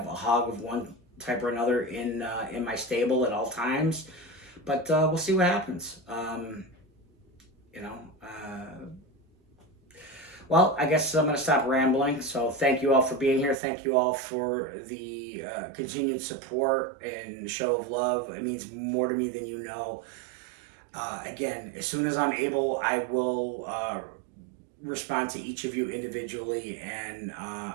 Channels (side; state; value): left; drops out; at 13.6 s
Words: a hog of one type or another in my stable at all times. But we'll see what happens. Well, I guess I'm going to stop rambling. So thank you all for being here. Thank you all for the continued support and show of love. It means more to me than you know. Again, as soon as I'm able, I will respond to each of you individually. And